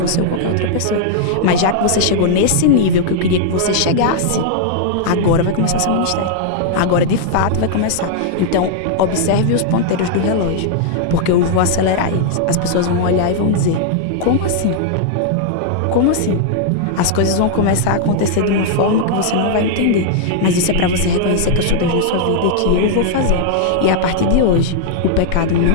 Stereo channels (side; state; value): both; different; correlation -0.01